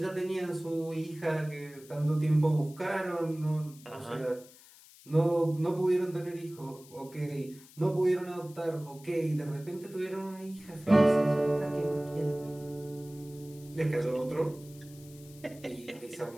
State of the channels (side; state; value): left; noise; hiss, 22 dB below the sound